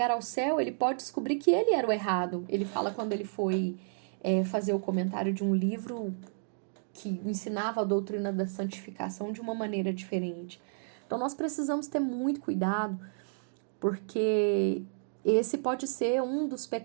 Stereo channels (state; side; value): silent; left; digital silence